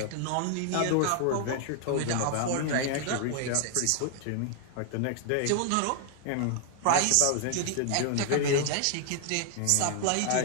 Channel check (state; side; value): different; both; correlation 0.00